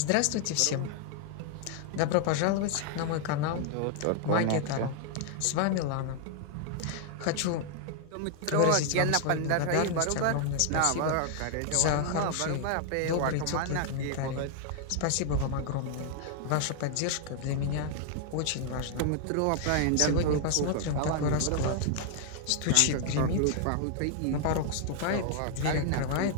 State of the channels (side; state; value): both; different; correlation 0.00